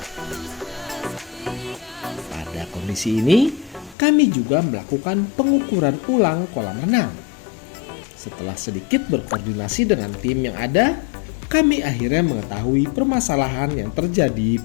Pada kondisi ini, kami juga melakukan pengukuran ulang kolam renang. Setelah sedikit berkoordinasi dengan tim yang ada, kami akhirnya mengetahui permasalahan yang terjadi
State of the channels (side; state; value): right; drops out; at 4.0 s